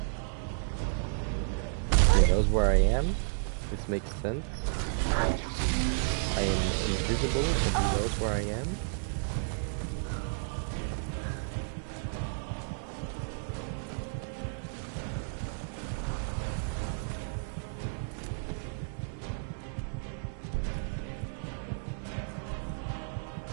He knows where I am. This makes sense. I am invisible, but he knows where I am.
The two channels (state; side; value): silent; left; digital silence